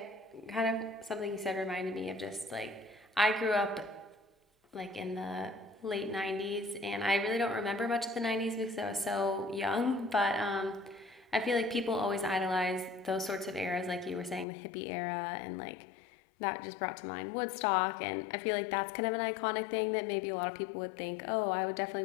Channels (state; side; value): drops out; right; at 14.5 s